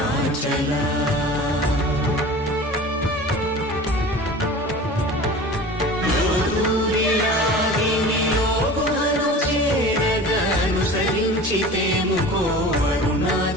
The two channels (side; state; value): both; normal; correlation 0.38